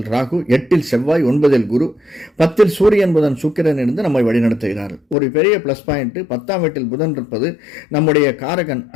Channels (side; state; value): right; drops out; at 5.2 s